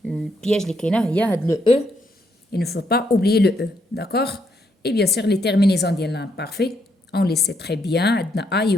le piège, il y a le E. Il ne faut pas oublier le E, d'accord? Et bien sûr, les terminaisons de l'imparfait, on les sait très bien,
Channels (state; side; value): normal; both; correlation 0.75